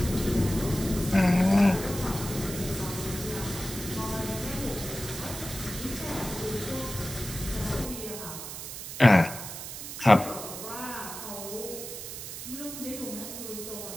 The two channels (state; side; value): noise; right; hiss, 9 dB below the sound